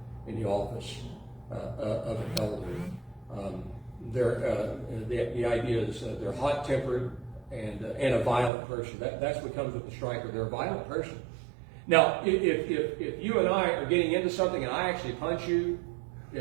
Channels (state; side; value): drops out; left; at 8.5 s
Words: in the office of an elder. The idea is they're hot-tempered and a violent person. That's what comes with the striker. They're a violent person. Now, if you and I are getting into something and I actually punch you,